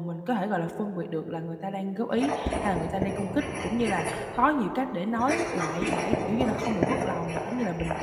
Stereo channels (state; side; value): identical; both; correlation 1.00